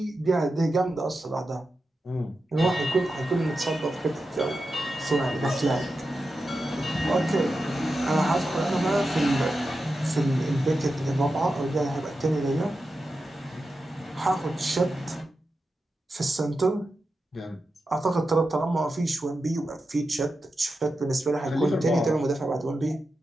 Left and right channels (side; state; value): both; normal; correlation 0.90